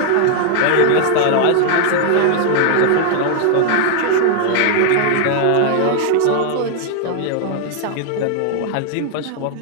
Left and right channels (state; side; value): different; both; correlation 0.00